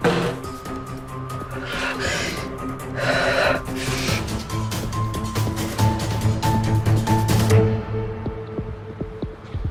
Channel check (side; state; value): both; identical; correlation 1.00